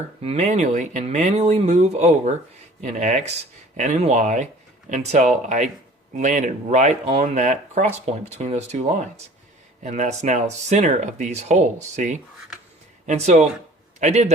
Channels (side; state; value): both; normal; correlation 0.48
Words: manually move over in X and in Y until I landed right on that cross point between those two lines. And that's now the center of these holes, see? And so I did